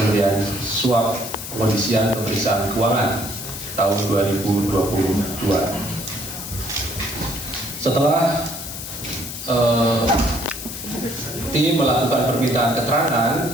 suap pengondisian pemeriksaan keuangan tahun 2022. Setelah tim melakukan permintaan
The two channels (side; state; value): left; noise; hiss, 9 dB below the sound